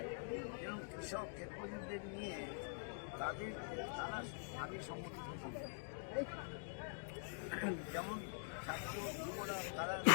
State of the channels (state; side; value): silent; right; digital silence